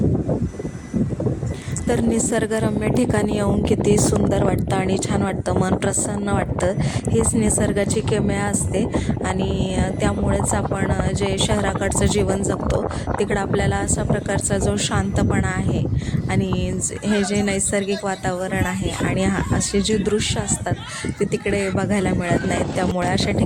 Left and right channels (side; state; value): both; identical; correlation 1.00